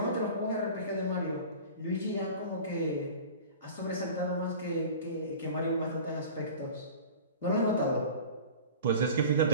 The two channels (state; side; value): inverted; both; correlation -0.38